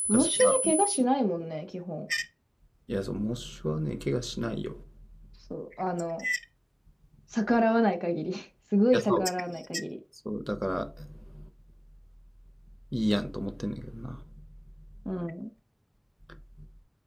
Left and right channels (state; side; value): identical; both; correlation 1.00